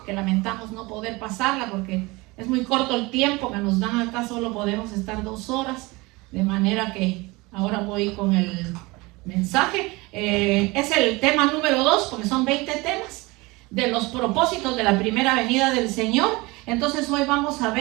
que lamentamos no poder pasarla porque es muy corto el tiempo que nos dan acá, solo podemos estar 2 horas, de manera que ahora voy con el mensaje. Es el tema número 2, porque son 20 temas de los propósitos de la primera venida del Señor. Entonces hoy vamos a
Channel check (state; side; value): quieter; left; 23.5 dB